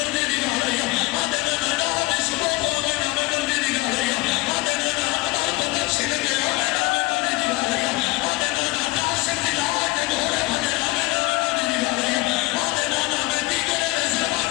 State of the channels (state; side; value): quieter; right; 21.4 dB